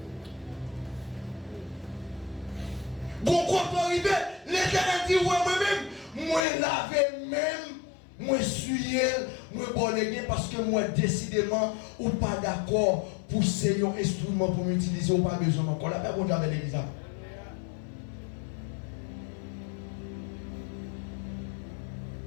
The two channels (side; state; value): right; drops out; at 6.5 s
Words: Quand on arrive, l'Éternel dit ouais moi-même, moi laver même. Moi suis moi bonnégué parce que moi décidément ou pas d'accord pour ces instruments pour m'utiliser ou pas besoin encore. La paix pour Dieu avec l'église.